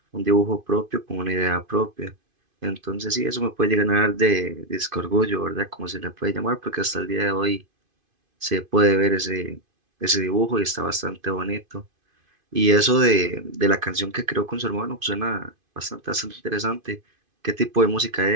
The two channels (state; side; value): late; left; 2.5 ms